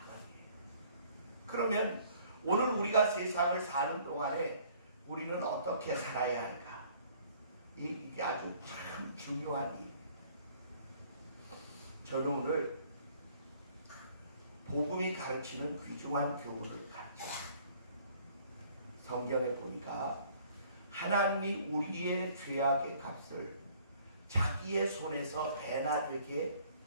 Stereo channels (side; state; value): both; inverted; correlation -0.57